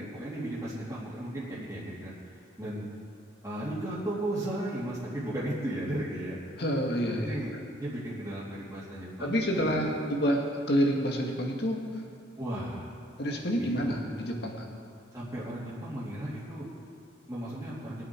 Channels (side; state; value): both; normal; correlation 0.64